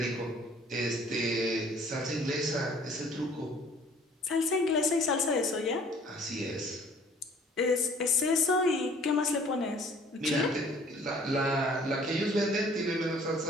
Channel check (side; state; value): both; normal; correlation 0.54